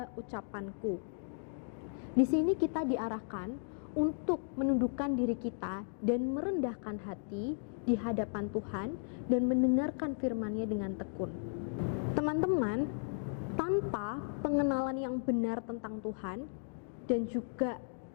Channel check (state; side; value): silent; right; digital silence